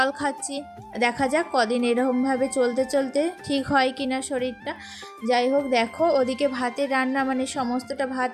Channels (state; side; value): identical; both; correlation 1.00